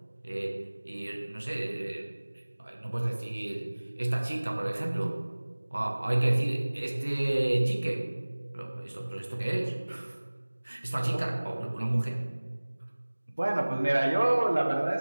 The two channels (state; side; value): inverted; both; correlation -1.00